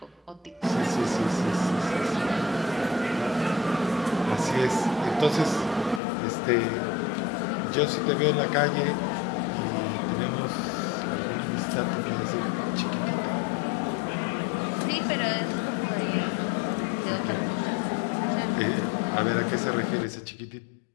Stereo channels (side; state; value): right; drops out; at 6.0 s